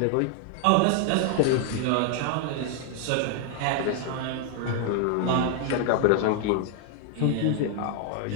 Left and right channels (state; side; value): different; both; correlation 0.00